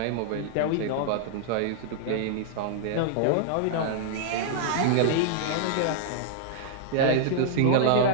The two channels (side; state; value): both; different; correlation -0.01